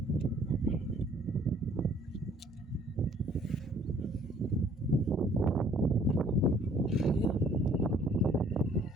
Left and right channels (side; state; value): both; normal; correlation 0.58